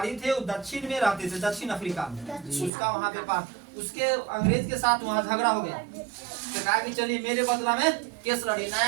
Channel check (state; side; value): drops out; left; at 2.7 s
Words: थे। वो दक्षिण में रहते थे, दक्षिण अफ्रीका में। उसका वहाँ व्यापार, उसके अंग्रेज के साथ वहाँ झगड़ा हो गया। तो कहा कि चलिए मेरे बदला में केस लड़ी।